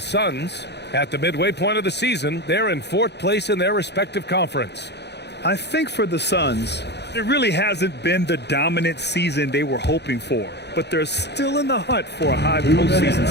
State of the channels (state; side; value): late; right; 0.49 ms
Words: At the midway point of the season, they're in 4th place in their respective conference. I think for the Suns, it really hasn't been the dominant season they were hoping for, but they're still in the hunt for a high postseason